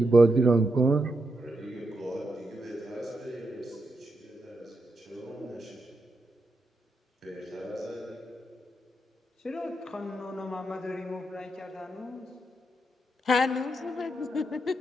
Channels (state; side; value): normal; both; correlation 0.83